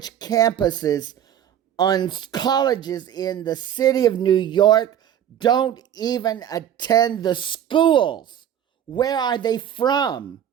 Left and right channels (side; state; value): left; quieter; 10.1 dB